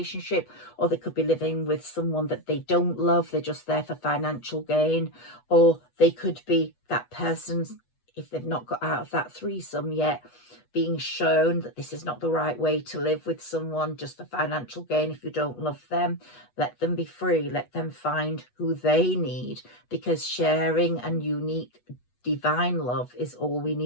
or they could be living with someone that they don't love, they're just there for financial gain, or they could be that person, if they've not got out of that threesome yet, being shown that this is not the right way to live with someone just for financial gain. If you don't love them, let them be free, let them find who they need, because sharing and unique divine love is all we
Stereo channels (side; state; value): right; late; 8.2 ms